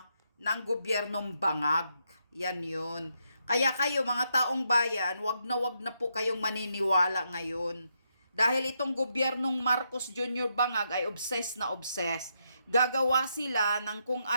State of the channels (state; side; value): inverted; both; correlation -0.80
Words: ng gobyernong bangag. Yan yun. Kaya kayo mga taong bayan, wag na po kayong maniniwala ngayon. Dahil itong gobyernong Marcos Jr. bangag ay obsessed na obsessed. Gagawa sila ng kung